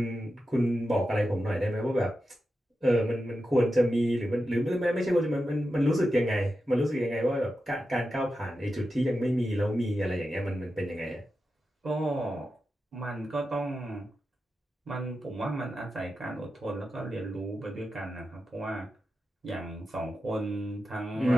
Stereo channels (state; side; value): normal; both; correlation 0.90